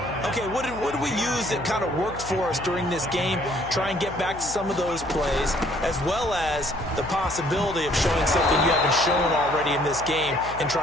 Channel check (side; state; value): left; noise; hum, 14 dB below the sound